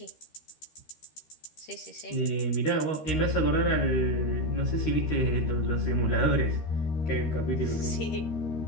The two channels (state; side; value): late; right; 13 ms